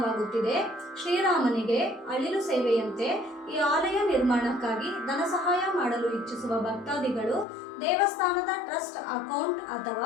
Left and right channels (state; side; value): drops out; right; at 7.5 s